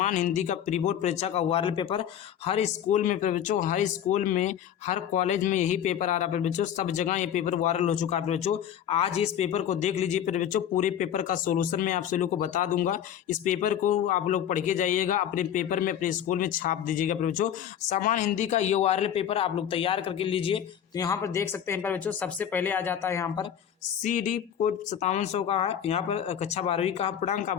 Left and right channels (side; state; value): right; quieter; 9.6 dB